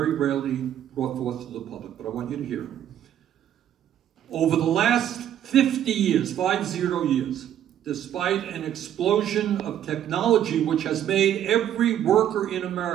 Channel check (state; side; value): quieter; left; 10.7 dB